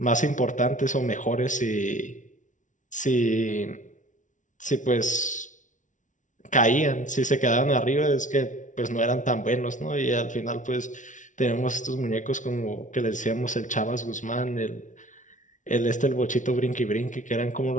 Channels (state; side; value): late; right; 0.37 ms